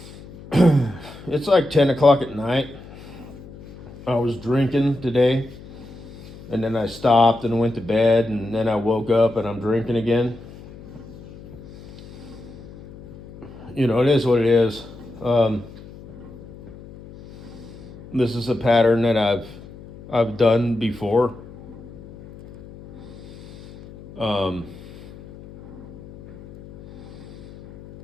It's like 10 o'clock at night. I was drinking today, and then I stopped and went to bed, and then I woke up and I'm drinking again. You know, it is what it is. This is a pattern that I've done before. Um,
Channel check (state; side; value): noise; left; hum, 17 dB below the sound